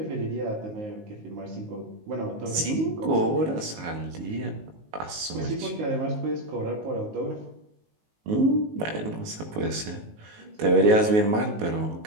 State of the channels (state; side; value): late; left; 19 ms